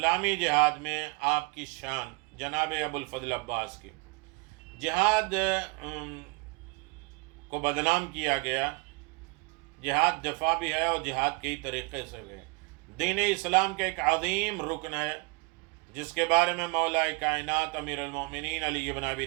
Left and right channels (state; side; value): quieter; left; 29.2 dB